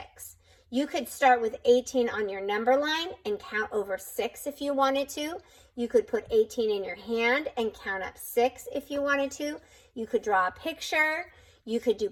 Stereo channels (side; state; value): both; identical; correlation 1.00